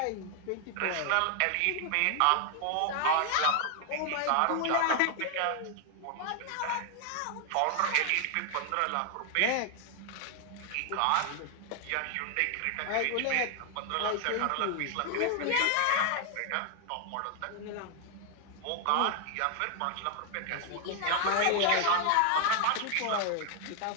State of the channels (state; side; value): different; both; correlation 0.00